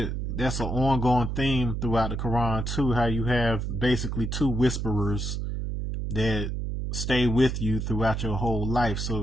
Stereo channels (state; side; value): noise; right; hum, 3 dB below the sound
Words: that's an ongoing theme throughout the Quran too, how you have basically two whisperers that stay with you throughout your whole life.